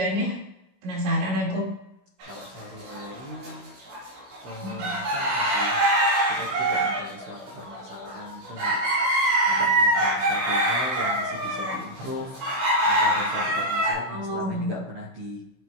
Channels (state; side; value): late; left; 16 ms